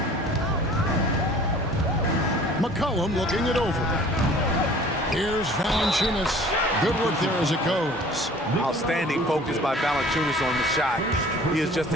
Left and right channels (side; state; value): both; normal; correlation 0.49